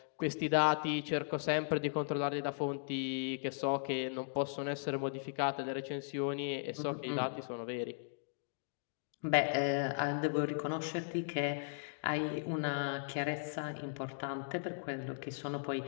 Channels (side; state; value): right; silent; digital silence